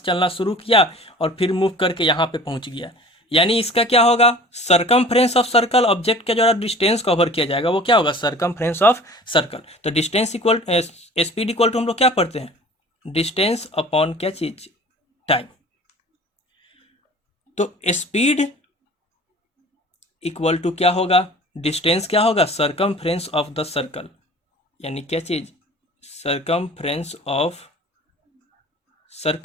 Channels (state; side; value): normal; both; correlation 0.44